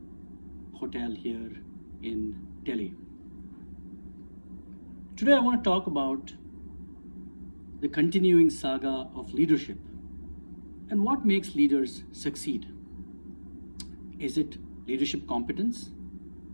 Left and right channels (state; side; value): inverted; both; correlation -1.00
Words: hotel here in Delhi. Today I want to talk about the continuing saga of leadership and what makes leaders succeed. Is it leadership competence?